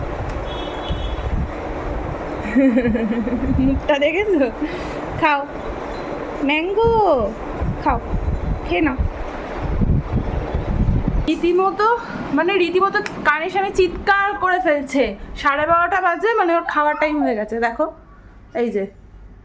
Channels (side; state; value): both; identical; correlation 1.00